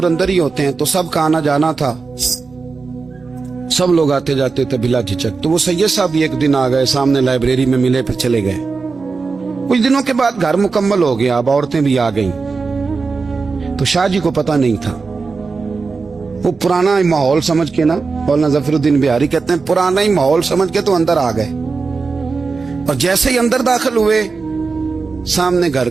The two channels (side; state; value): left; quieter; 4.5 dB